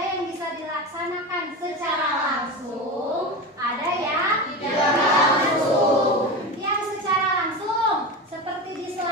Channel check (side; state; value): both; normal; correlation 0.24